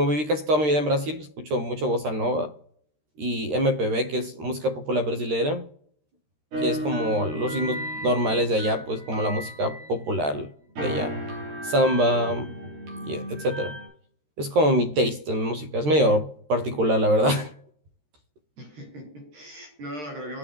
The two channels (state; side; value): late; left; 13 ms